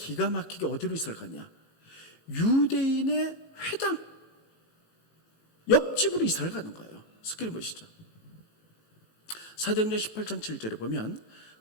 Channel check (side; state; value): right; late; 18 ms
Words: 막히게 어디로 이사를 갔냐? 유대인의 회당 옆집으로 이사를 가는 거예요. 스크린 보시죠. 사도행전 18장 7절에 보면